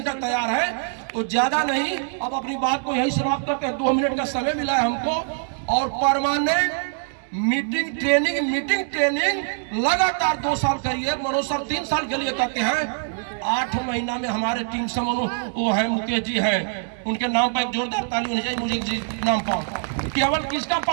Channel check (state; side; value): silent; left; 63 dB below the other